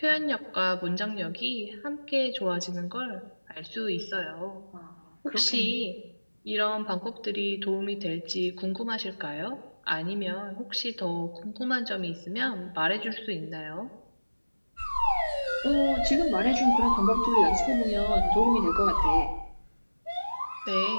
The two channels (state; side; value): inverted; both; correlation -1.00